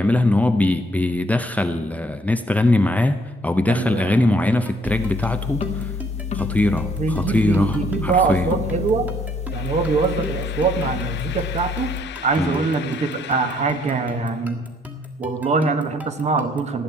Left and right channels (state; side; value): normal; both; correlation 0.66